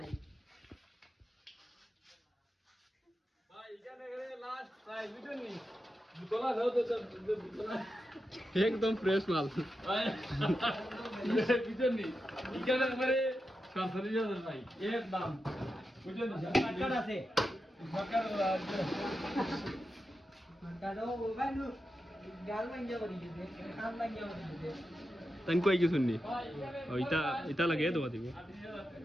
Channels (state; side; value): normal; both; correlation 0.89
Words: ভাই ইকান এখানে লাস্ট ভাই বুঝুনি তোলা দাও তো তোলা একদম ফ্রেশ মাল। ভাই বুঝুনি ইকান একবারে 47,000 ভাই এর দাম বুঝুনি কাট আছে সরকার কাটো ভাই নো গাল ভাঙ্গা বলি দে কাম ভাঙ্গা বলি দে তাই কই কিছু নি? ও ইটা লাগে দেওয়া দিব।